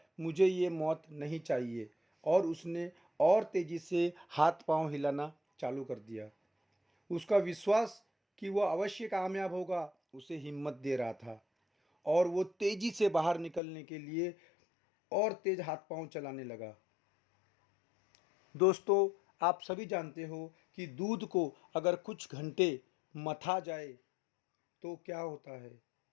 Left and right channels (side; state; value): right; drops out; at 13.6 s